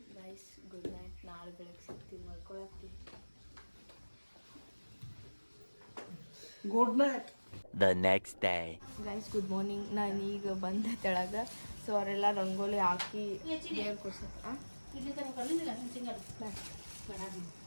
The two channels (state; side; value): inverted; both; correlation -1.00